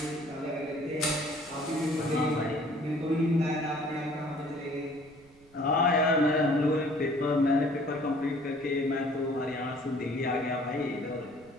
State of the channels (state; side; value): noise; right; rumble, 27 dB below the sound